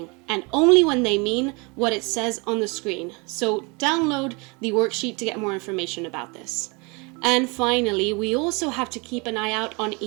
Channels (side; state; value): left; quieter; 29.4 dB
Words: and only when they mean what it says on the screen. So download the worksheet to get more information about this. And finally, we also have to keep an eye out on